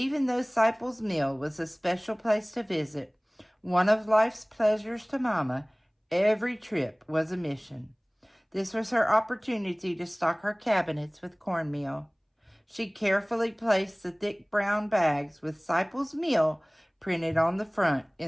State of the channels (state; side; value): identical; both; correlation 1.00